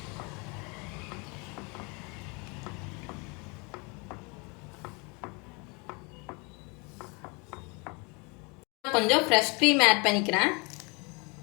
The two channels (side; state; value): right; quieter; 30.3 dB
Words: கொஞ்சம் ஃப்ரெஷ் க்ரீம் ஆட் பண்ணிக்கிறேன்.